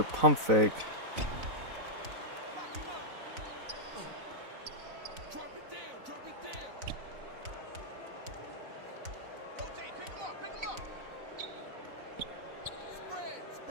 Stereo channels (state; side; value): late; left; 4.0 ms